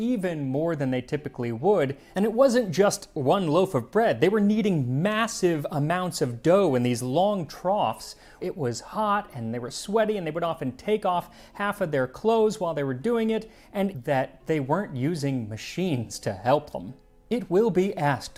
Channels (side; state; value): both; identical; correlation 1.00